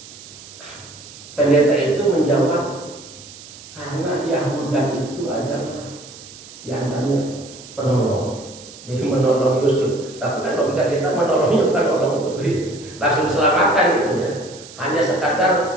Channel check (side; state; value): right; noise; hiss, 18 dB below the sound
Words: pendeta itu menjawab karena Yahuda itu adalah diantaranya penolong, jadi menolong Yusuf. Tapi kan logika kita menolongnya bukan menolong untuk langsung diselamatkan gitu ya, hanya